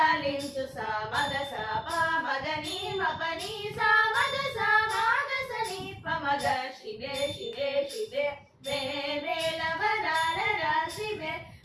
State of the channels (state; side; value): identical; both; correlation 1.00